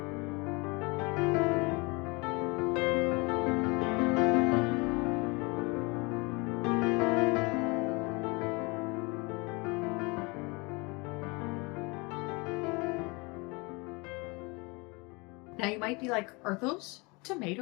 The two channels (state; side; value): quieter; right; 27.7 dB